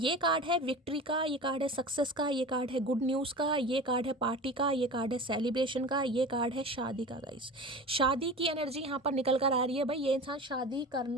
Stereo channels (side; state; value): both; normal; correlation 0.34